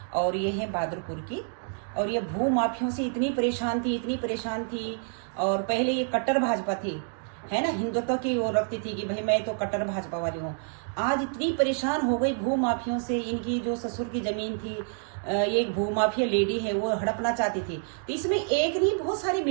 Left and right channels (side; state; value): left; silent; 59 dB below the other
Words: और ये है बहादुरपुर की। और ये भू माफियों से इतनी परेशान थी और पहले ये कट्टर भाजपा थी, है ना, हिंदुत्व की वो रखती थी कि भाई मैं तो कट्टर भाजपा वाली हूँ। आज इतनी परेशान हो गई भू माफियों से। इनकी जो ससुर की जमीन थी, ये एक भू माफिया लेडी है, वो हड़पना चाहती थी, तो इसमें एक नहीं बहुत सारे